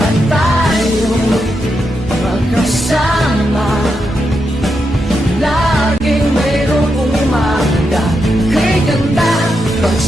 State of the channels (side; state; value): both; normal; correlation 0.84